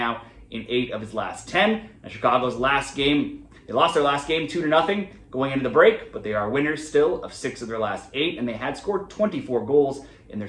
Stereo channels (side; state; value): both; identical; correlation 1.00